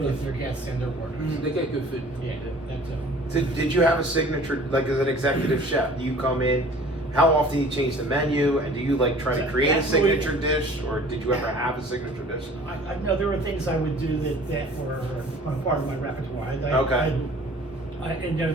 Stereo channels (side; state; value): both; normal; correlation 0.49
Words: their guests and their workers. They get good food. Yeah, that's Did you have a signature, like as an executive chef? Do you come in? How often do you change the menu? And do you like try to So create a that's really- signature dish, or did you ever have a signature dish? I know there were things I would do that were part of my repertoire. Okay.